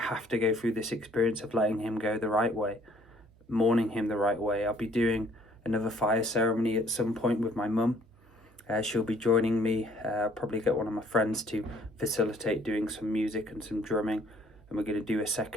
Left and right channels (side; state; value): right; noise; hum, 28 dB below the sound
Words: to go through this experience of letting him go the right way, mourning him the right way. I'll be doing another fire ceremony at some point with my mum. She'll be joining me. Probably get one of my friends to facilitate doing some music and some drumming. And we're going to do a